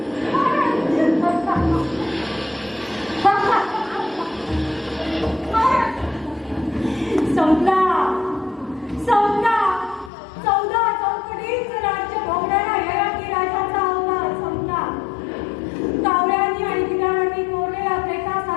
संपला संपला. 14 चौकटीचं राज्य भोगणारा ययाती राजाचा अवतार संपला. कावळ्यांनी आणि गिधाडांनी कोरलेल्या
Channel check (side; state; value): right; drops out; at 10.1 s